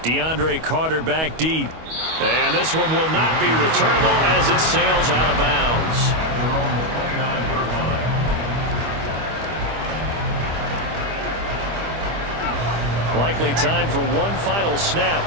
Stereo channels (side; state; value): left; late; 25 ms